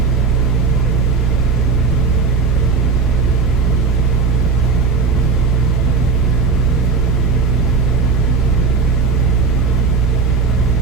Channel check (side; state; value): left; quieter; 4.6 dB